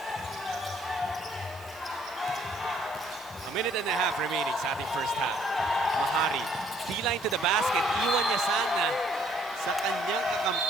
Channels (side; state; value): right; noise; hiss, 23 dB below the sound